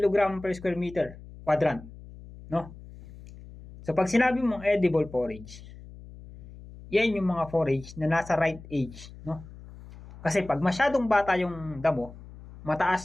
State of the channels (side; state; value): left; noise; hum, 17 dB below the sound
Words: per square meter quadrant, no? So pag sinabi mong edible forage, yan yung mga forage na nasa right age, no? Kasi pag masyadong bata yung damo,